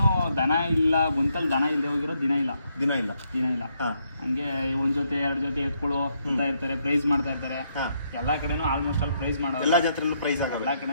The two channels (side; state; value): both; inverted; correlation -0.76